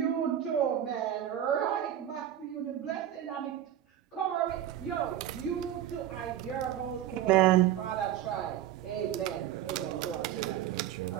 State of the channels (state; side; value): quieter; left; 11.3 dB